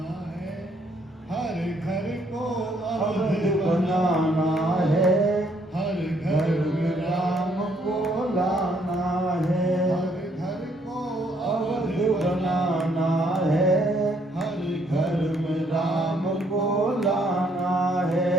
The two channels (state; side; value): normal; both; correlation 0.69